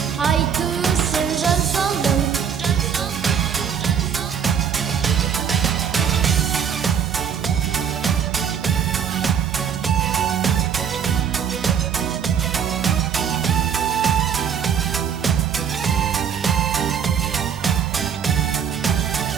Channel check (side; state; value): left; quieter; 7.7 dB